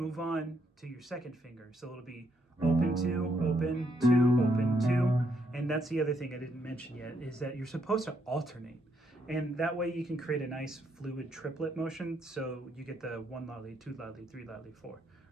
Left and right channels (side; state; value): both; normal; correlation 0.75